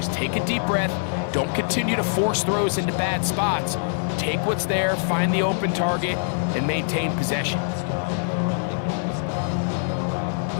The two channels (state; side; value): silent; right; 56 dB below the other